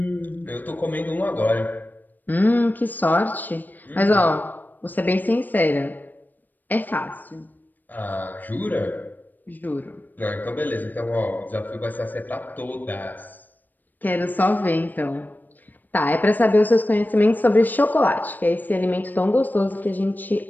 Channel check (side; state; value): right; late; 0.087 ms